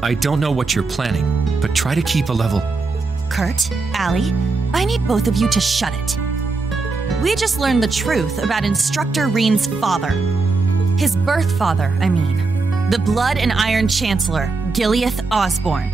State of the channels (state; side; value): quieter; left; 3.9 dB